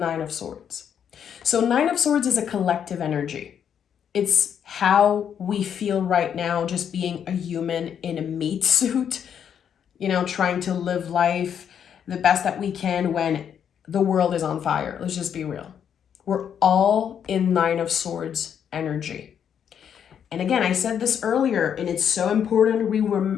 of Swords. So 9 of Swords is a collective energy. It's how we feel right now, just being a human in a meat suit, trying to live life the best that we can when the world is on fire. Let's just be real. We're all in 9 of Swords energy. And again, I said this earlier, and it's so important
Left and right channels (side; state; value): right; quieter; 8.4 dB